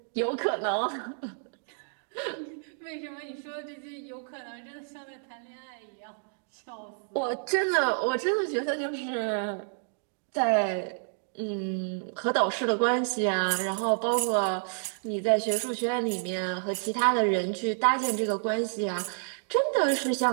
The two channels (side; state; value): left; silent; digital silence